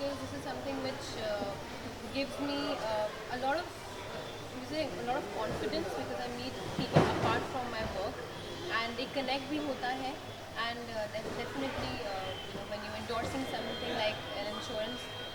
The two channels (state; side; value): identical; both; correlation 1.00